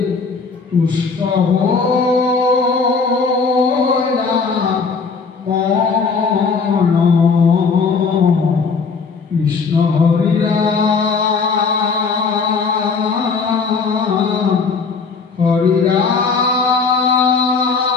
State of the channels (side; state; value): right; quieter; 4.9 dB